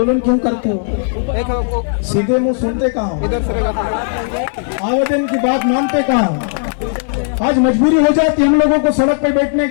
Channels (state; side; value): silent; right; digital silence